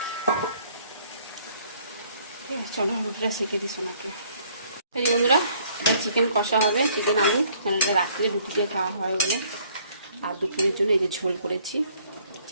চলো রুটিটা সেঁকে দিই সোনাকে। এই যে বন্ধুরা, এটা চিকেন কষা হবে, চিকেন আলু, কারণ এটা রাত্রে রুটি দিয়ে খাওয়া হয় বলে। আর দুপুরের জন্য এই যে ঝোল করেছি,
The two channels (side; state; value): both; inverted; correlation -0.61